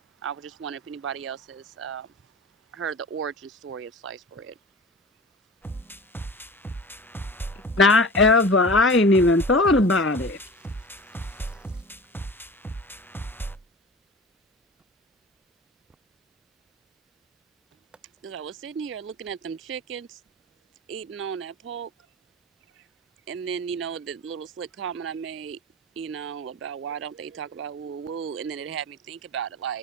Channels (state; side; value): normal; both; correlation 0.36